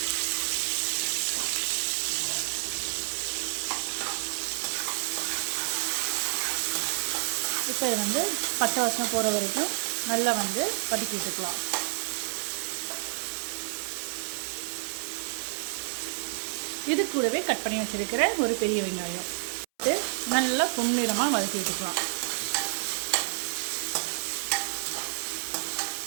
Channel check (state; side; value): silent; left; 58 dB below the other